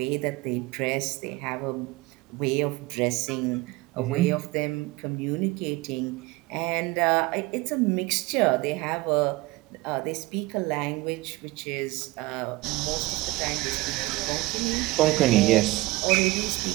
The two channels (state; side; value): quieter; left; 20.8 dB